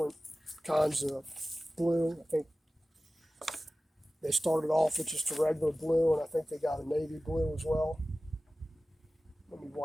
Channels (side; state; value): both; normal; correlation 0.96